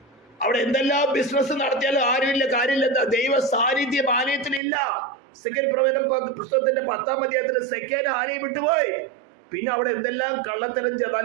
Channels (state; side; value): drops out; left; at 4.6 s